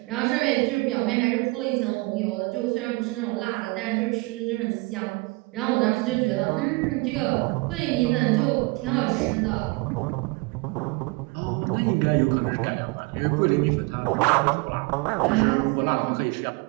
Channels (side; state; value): left; quieter; 26.0 dB